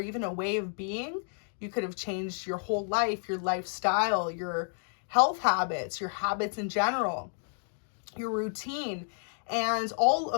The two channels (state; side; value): silent; right; 56 dB below the other